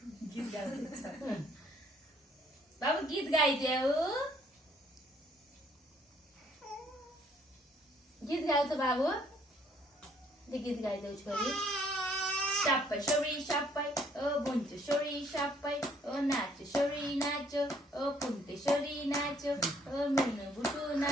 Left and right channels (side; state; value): both; normal; correlation 0.64